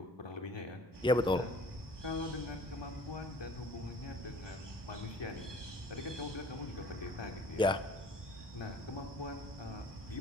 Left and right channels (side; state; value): both; normal; correlation 0.51